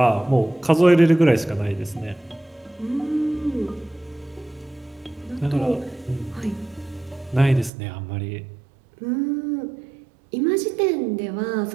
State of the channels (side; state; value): left; drops out; at 7.7 s